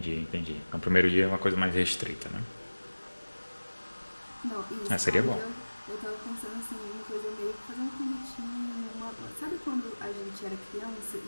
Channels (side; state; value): both; inverted; correlation -1.00